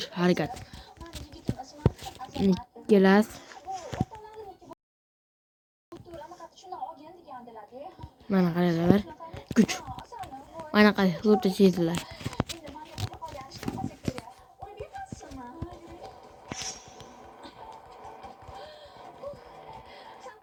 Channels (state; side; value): identical; both; correlation 1.00